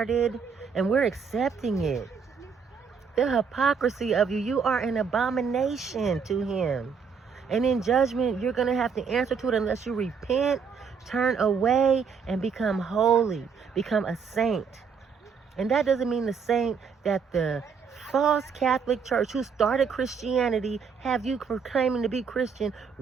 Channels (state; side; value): quieter; left; 6.0 dB